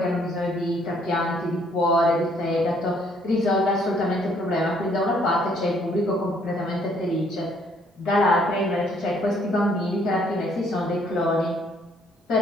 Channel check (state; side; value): normal; both; correlation 0.65